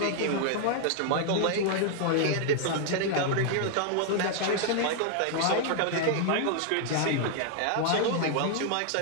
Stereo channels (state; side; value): different; both; correlation 0.00